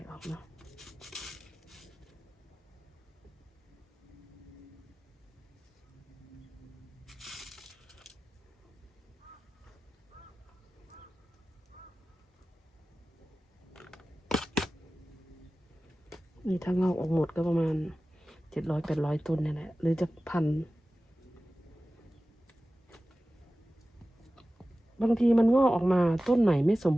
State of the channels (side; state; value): both; normal; correlation 0.96